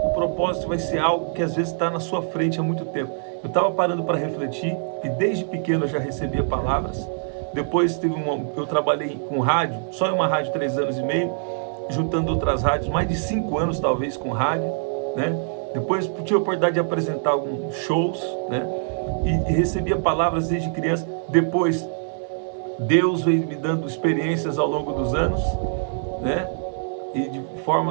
O propósito vai ser algo que às vezes está na sua frente há muito tempo. Eu estava parando para refletir e desde pequeno eu já recebia palavras. Depois eu trabalhei com rádio, só em uma rádio 3 anos e meio, juntando outras rádios, mais de 5 anos talvez com rádio, né? Depois tive a oportunidade de apresentar alguns shows, né? E recebia palavras desde criança. Depois Deus veio me dando experiências ao longo dos anos, né? E de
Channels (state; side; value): silent; left; digital silence